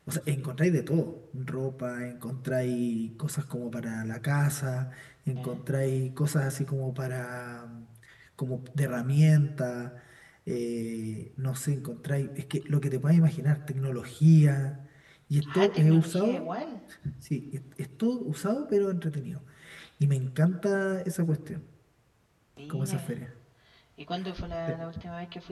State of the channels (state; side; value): identical; both; correlation 1.00